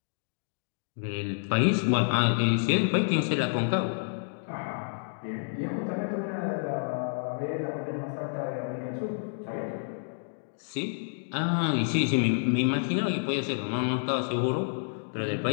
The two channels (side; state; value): right; silent; digital silence